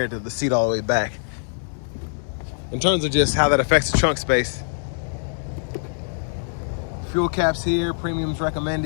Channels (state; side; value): silent; right; digital silence